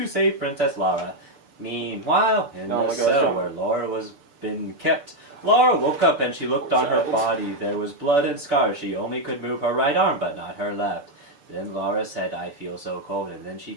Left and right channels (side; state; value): left; late; 6.8 ms